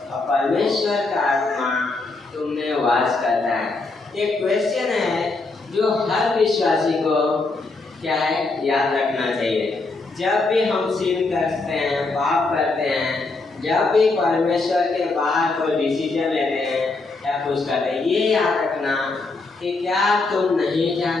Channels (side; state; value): right; quieter; 3.5 dB